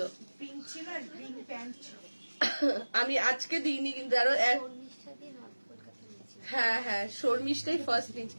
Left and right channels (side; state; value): both; inverted; correlation -1.00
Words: আমি আজকে দিইনি কিন্তু আরো হ্যাঁ শর্মিষ্ঠাই ফার্স্ট নিয়েছি,